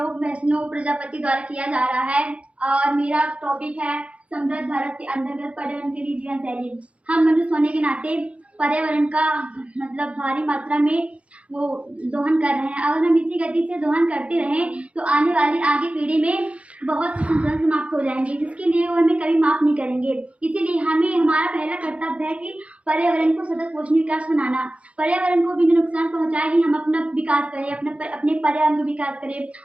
वैष्णव प्रजापति द्वारा किया जा रहा है और मेरा टॉपिक है समृद्ध भारत के अंतर्गत पर्यावरण के लिए जीवन शैली। हम मनुष्य होने के नाते पर्यावरण का मतलब भारी मात्रा में वो दोहन कर रहे हैं। अगर हम इसी गति से दोहन करते रहें तो आने वाली आगे पीढ़ी में बहुत से संसाधन समाप्त हो जाएंगे, जिसके लिए वो हमें कभी माफ नहीं करेंगे। इसीलिए हमें हमारा पहला कर्तव्य है कि पर्यावरण को सतत पोषणीय विकास बनाना। पर्यावरण को बिना नुकसान पहुंचाए ही हम अपना विकास करें, अपने पर्यावरण का विकास करें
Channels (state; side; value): late; left; 0.062 ms